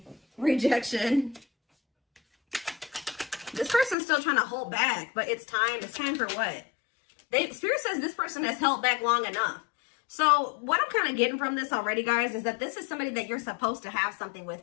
Rejection. This person's still trying to hold back, but it's time. It's time for what? Spirit says this person has held back long enough. So what I'm kind of getting from this already, guys, is that this is somebody that you're supposed to have something with.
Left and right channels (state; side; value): drops out; right; at 4.0 s